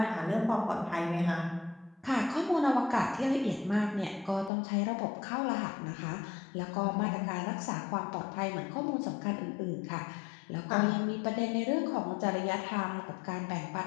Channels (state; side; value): drops out; right; at 4.5 s